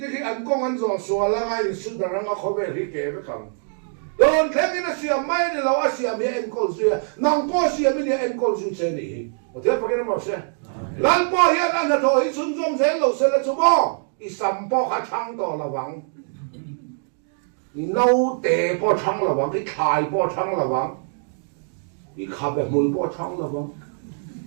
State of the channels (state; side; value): silent; left; 62 dB below the other